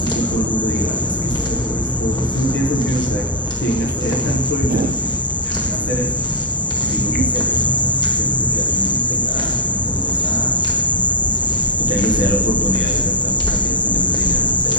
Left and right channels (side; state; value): both; normal; correlation -0.01